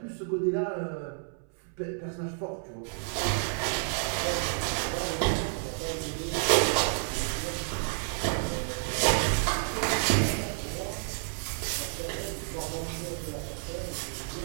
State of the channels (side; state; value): left; silent; 58 dB below the other